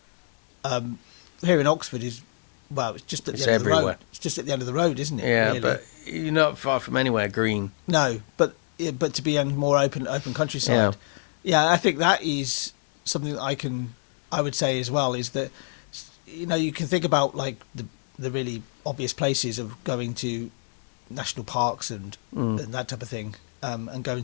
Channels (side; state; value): right; silent; 61 dB below the other